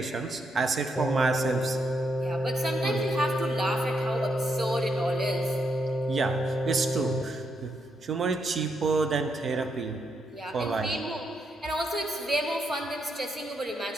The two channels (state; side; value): normal; both; correlation 0.79